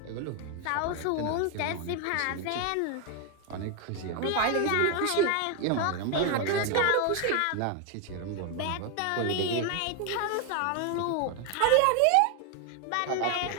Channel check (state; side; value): different; both; correlation 0.01